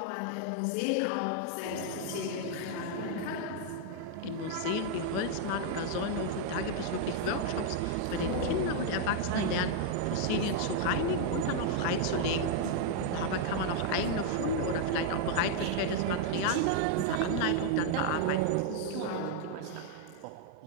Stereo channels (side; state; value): both; different; correlation 0.00